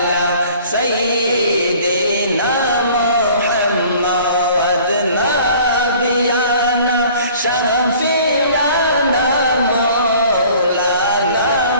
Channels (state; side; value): inverted; both; correlation -0.51